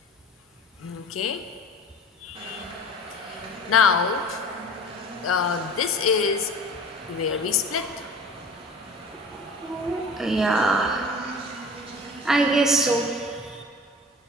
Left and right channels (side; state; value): both; normal; correlation 0.40